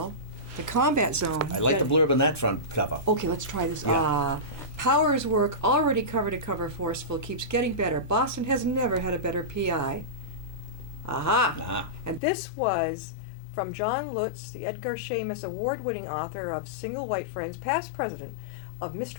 The Combat Zone. I like the blurb on that front cover. Okay, let's try this. Yeah. Power's work, already cover to cover forceful, keeps getting better. Boston has never had a better PI. Aha! Ah. And this was from John Lutz, the Edgar Shamus award-winning author of Single White Friends, past president of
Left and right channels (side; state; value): right; drops out; at 12.2 s